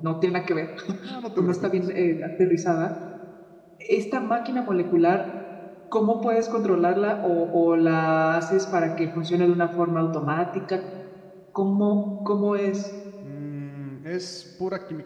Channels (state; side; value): identical; both; correlation 1.00